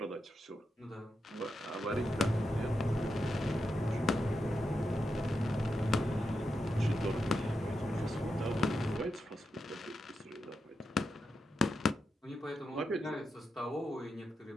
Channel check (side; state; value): both; normal; correlation 0.87